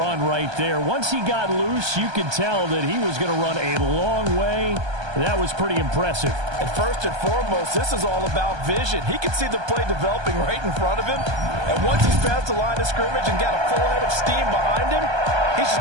right there. Once he got loose, you could tell that he was going to run a long way. That was pretty impressive. And first and foremost, this is all about vision. He can see the play developing right in front of him. And once he's past the line of scrimmage and got a full head of steam behind him, he's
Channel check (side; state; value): left; late; 1.2 ms